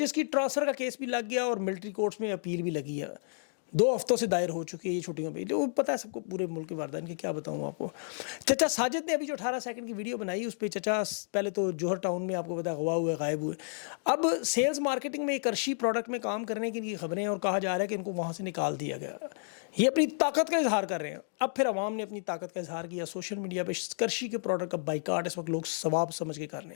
کی ٹرانسفر کا کیس بھی لگ گیا اور ملٹری کورٹس میں اپیل بھی لگی ہے، 2 ہفتوں سے دائر ہو چکی ہے یہ چھٹیوں پہ، جو پتہ ہے سب کو پورے ملک کے واردین کے، کیا بتاؤں آپ کو۔ چچا ساجد نے ابھی جو 18 سیکنڈ کی ویڈیو بنائی اس پہ چچا پہلے تو جوہر ٹاؤن میں آپ کو پتا اغوا ہوئے، غائب ہوئے، اب سیلز مارکیٹنگ میں ایک کرشی پروڈکٹ میں کام کرنے کی خبریں ہیں اور کہا جا رہا ہے کہ ان کو وہاں سے نکال دیا گیا۔ یہ اپنی طاقت کا اظہار کر رہے ہیں۔ اب پھر عوام نے اپنی طاقت کا اظہار کیا، سوشل میڈیا پہ کرشی کے پروڈکٹ کا بائیکاٹ اس وقت لوگ ثواب سمجھ کے کر رہے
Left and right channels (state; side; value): silent; right; digital silence